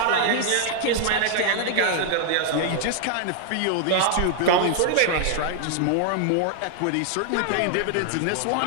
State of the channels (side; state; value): both; different; correlation -0.01